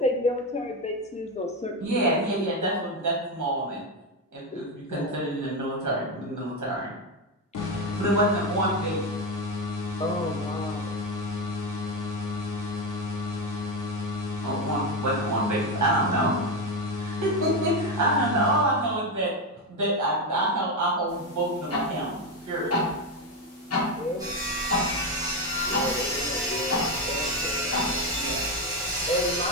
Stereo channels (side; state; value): both; normal; correlation 0.11